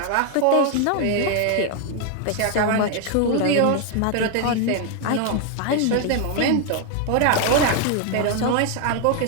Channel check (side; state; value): both; different; correlation 0.00